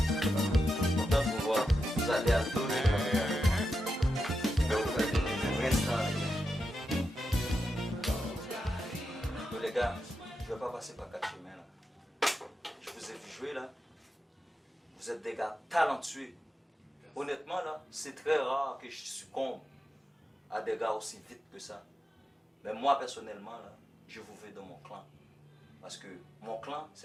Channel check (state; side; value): normal; both; correlation 0.88